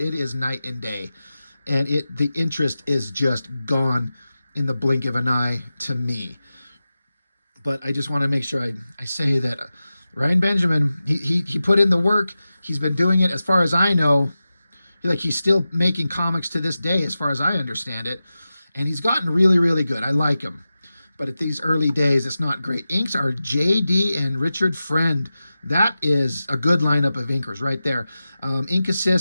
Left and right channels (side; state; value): both; inverted; correlation -0.94